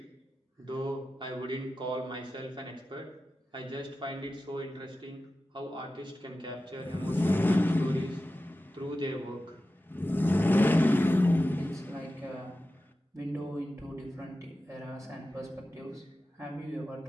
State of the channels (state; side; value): normal; both; correlation 0.93